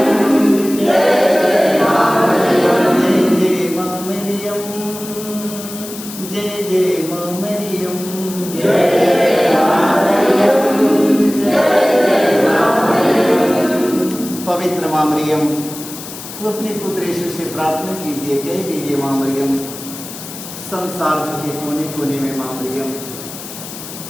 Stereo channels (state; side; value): noise; left; hiss, 12 dB below the sound